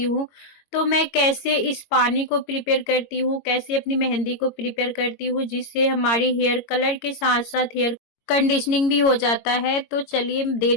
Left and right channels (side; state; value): right; late; 22 ms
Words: हूँ। तो मैं कैसे इस पानी को प्रिपेयर करती हूँ, कैसे अपनी मेहंदी को प्रिपेयर करती हूँ, जिससे हमारी हेयर कलर के साथ-साथ हेयर कंडीशनिंग भी हो जाता है। तो चलिए